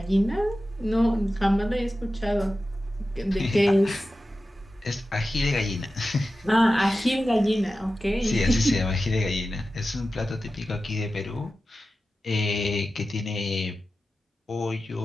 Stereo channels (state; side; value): normal; both; correlation 0.93